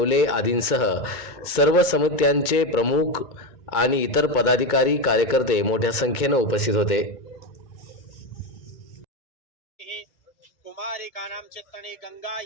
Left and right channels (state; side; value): late; right; 2.2 ms